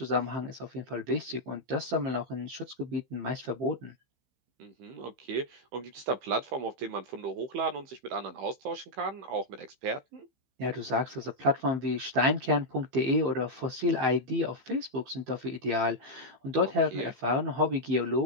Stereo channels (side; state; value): left; late; 15 ms